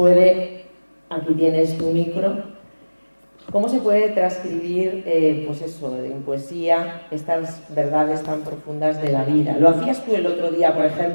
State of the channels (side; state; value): both; inverted; correlation -1.00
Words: aquí tienes tu micro, ¿Cómo se puede transcribir, pues eso, en poesía, estas verdades tan profundas de la vida? Lo hacías tú el otro día, por